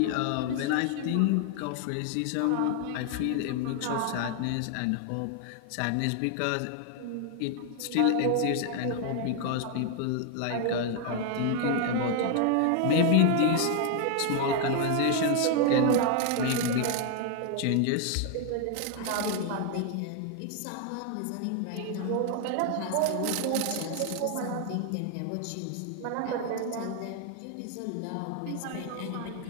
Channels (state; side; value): different; both; correlation 0.00